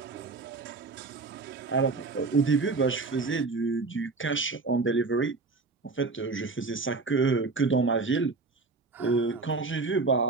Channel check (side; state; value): left; quieter; 3.9 dB